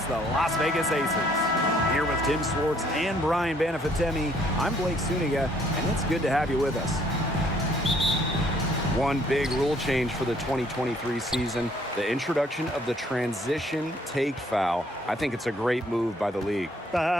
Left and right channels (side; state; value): both; normal; correlation 0.63